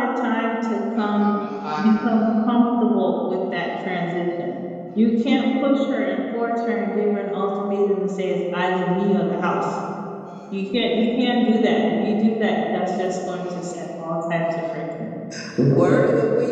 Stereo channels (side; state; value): both; identical; correlation 1.00